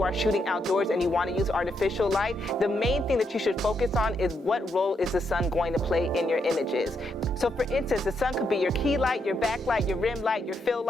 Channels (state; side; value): normal; both; correlation 0.79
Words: are shooting outdoors and you want to use artificial light, the main thing that you should focus on is what role is the sun going to play in your images. So for instance, the sun could be your key light, your backlight, your rim light, your fill